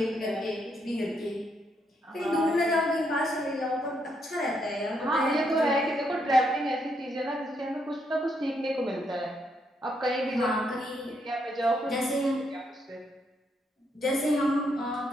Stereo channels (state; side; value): normal; both; correlation 0.76